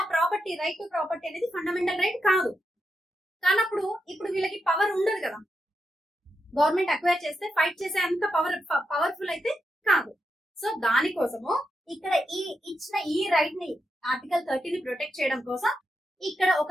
ఆ ప్రాపర్టీ, రైట్ టు ప్రాపర్టీ అనేది ఫండమెంటల్ రైట్ కాదు. కానప్పుడు ఇప్పుడు వీళ్ళకి పవర్ ఉండదు కదా. గవర్నమెంట్ అక్వైర్ చేస్తే ఫైట్ చేసే అంత పవర్ఫుల్ అయితే కాదు. సో దానికోసము ఇక్కడ ఇచ్చిన ఈ రైట్ ని, ఆర్టికల్ 30 ని ప్రొటెక్ట్ చేయడం కోసం ఇక్కడ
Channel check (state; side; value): normal; both; correlation 0.85